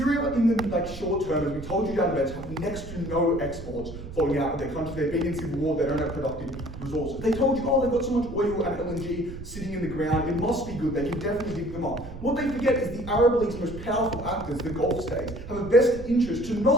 in the short term, as we told you down the bench, have next to no exports flowing out of their country. They've been in civil war, they don't have productive resources. They told you, oh, they've got so much oil and LNG sitting in the ground, it must be good, they can definitely dig them up. What they forget is the Arab League's most powerful actors, the Gulf states, have a vested interest to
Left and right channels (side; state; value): right; noise; rumble, 12 dB below the sound